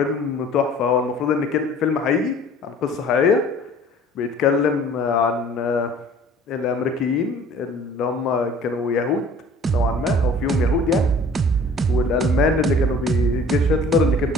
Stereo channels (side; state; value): both; normal; correlation 0.49